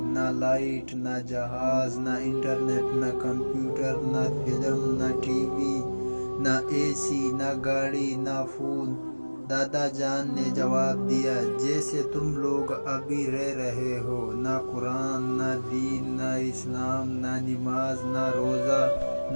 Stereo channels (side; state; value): both; inverted; correlation -1.00